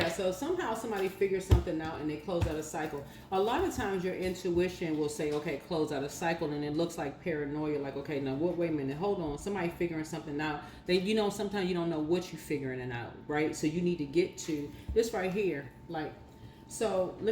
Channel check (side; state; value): both; identical; correlation 1.00